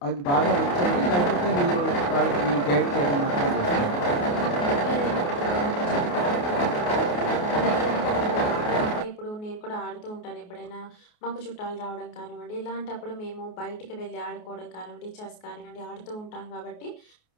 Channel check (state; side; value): late; right; 28 ms